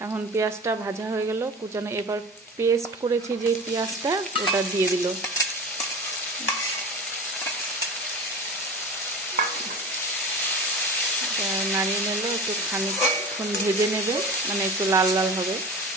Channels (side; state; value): both; normal; correlation 0.33